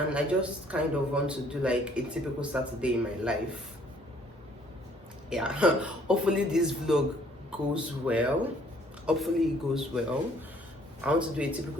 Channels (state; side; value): normal; both; correlation 0.61